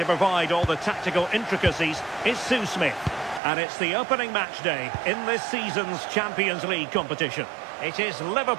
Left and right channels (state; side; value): drops out; left; at 3.4 s